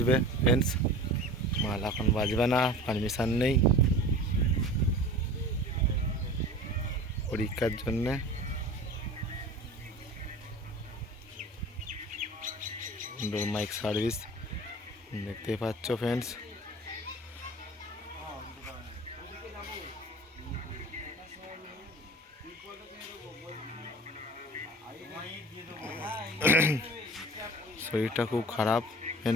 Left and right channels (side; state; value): both; normal; correlation 0.38